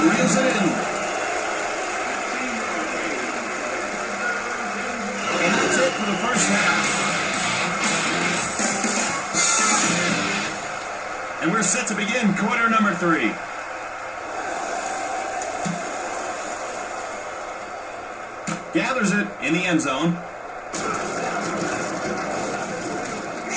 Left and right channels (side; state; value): both; identical; correlation 1.00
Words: reels it in. And that's it for the first half. And we're set to begin quarter number 3. Gathers it in the end zone.